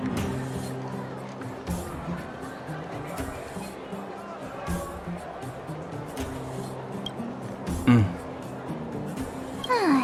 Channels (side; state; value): both; identical; correlation 1.00